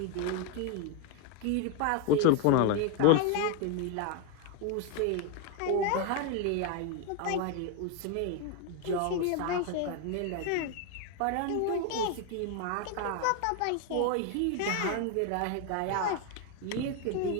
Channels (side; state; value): both; different; correlation 0.01